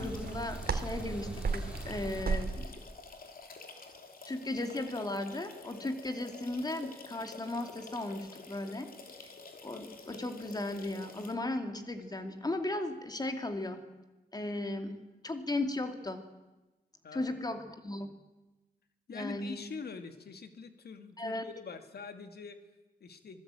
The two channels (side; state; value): both; normal; correlation 0.71